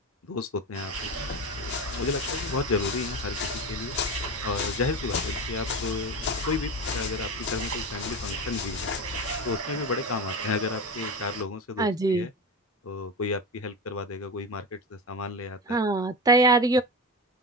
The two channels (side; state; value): both; normal; correlation 0.23